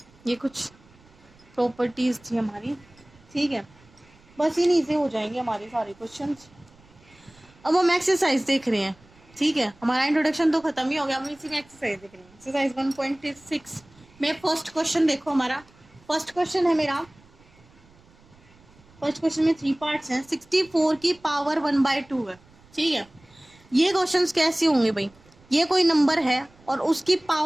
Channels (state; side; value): noise; right; rumble, 28 dB below the sound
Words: ये कुछ प्रॉपर्टीज थी हमारी, ठीक है। बस इन्हीं से हो जाएंगे हमारे सारे क्वेश्चंस। अब हम एक्सरसाइज देख रहे हैं, ठीक है। हमारा इंट्रोडक्शन तो खत्म ही हो गया, हम इसी में एक्सरसाइज देख रहे हैं। एक्सरसाइज 1.6 में फर्स्ट क्वेश्चन देखो, हमारा फर्स्ट क्वेश्चन है मेरा। फर्स्ट क्वेश्चन में 3 पार्ट्स हैं। 64 की पावर 1/2 है, ठीक है। ये क्वेश्चंस कैसे होंगे भाई, ये कोई नंबर है और उसकी